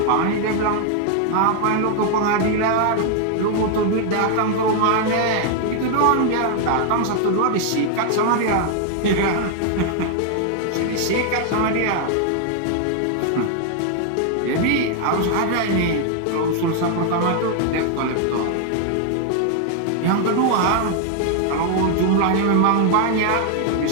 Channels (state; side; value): different; both; correlation 0.00